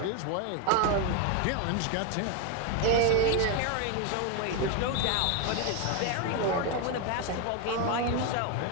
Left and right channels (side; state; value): both; different; correlation 0.01